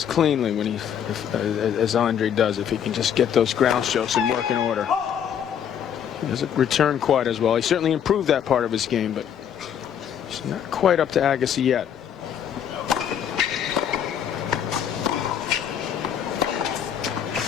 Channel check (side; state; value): right; quieter; 8.8 dB